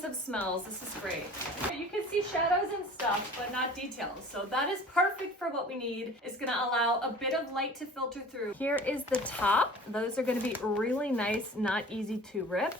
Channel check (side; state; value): both; normal; correlation 0.44